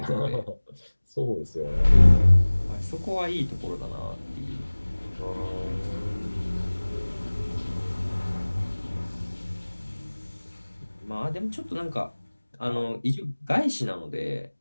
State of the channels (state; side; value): inverted; both; correlation -1.00